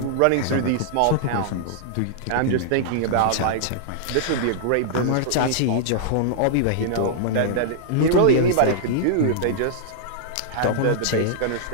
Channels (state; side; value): different; both; correlation -0.01